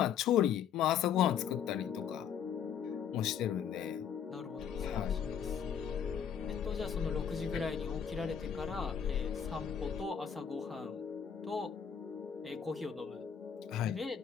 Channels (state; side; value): quieter; right; 7.9 dB